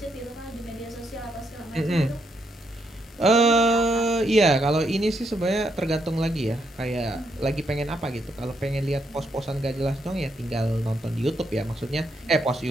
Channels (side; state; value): both; normal; correlation 0.77